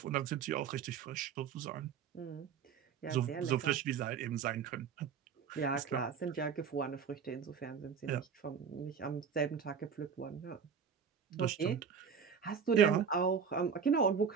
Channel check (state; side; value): quieter; left; 6.8 dB